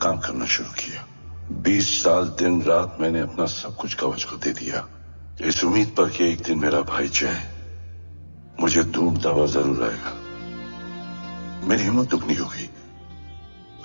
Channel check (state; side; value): inverted; both; correlation -1.00